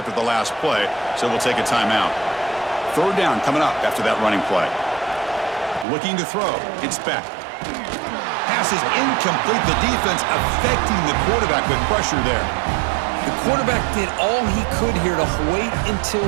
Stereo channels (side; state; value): left; drops out; at 5.9 s